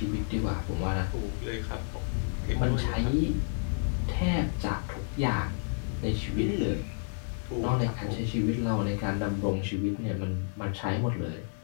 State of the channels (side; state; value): right; silent; digital silence